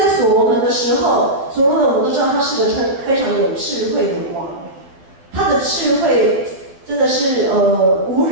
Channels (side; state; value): left; late; 11 ms